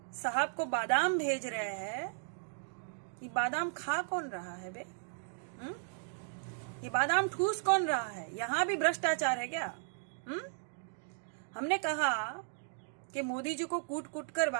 साहब को बादाम भेज रहे हैं। ये बादाम खा कौन रहा है बे? ये बादाम ठूस कौन रहा है? यहाँ भी भ्रष्टाचार है क्या? हमने कहा कि मोदी जी को कूट कूट कर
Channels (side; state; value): left; silent; digital silence